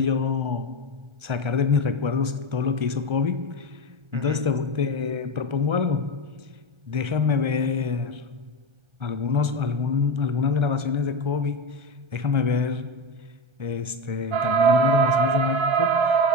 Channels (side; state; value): left; late; 1.3 ms